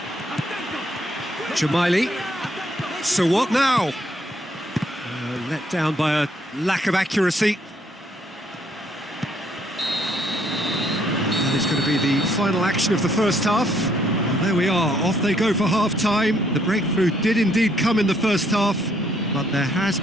Jamaili. So what now? Let down by a lack of accuracy. It's going to be the final action of the first half. Well, there we are, off they go for half-time. The breakthrough did indeed come in the first half, but there has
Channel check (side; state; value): both; normal; correlation 0.69